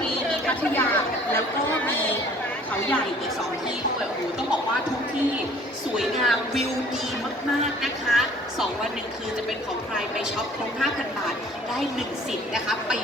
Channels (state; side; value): normal; both; correlation 0.53